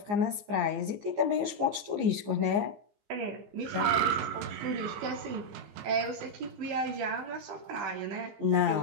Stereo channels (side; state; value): left; late; 15 ms